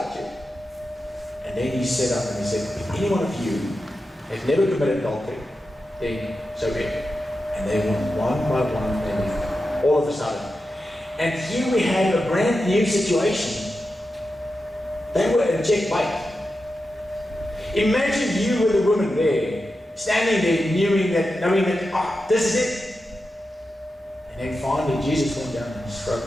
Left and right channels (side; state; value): both; normal; correlation 0.90